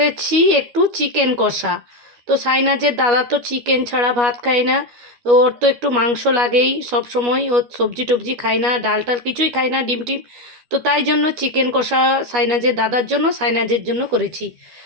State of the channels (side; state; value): left; late; 12 ms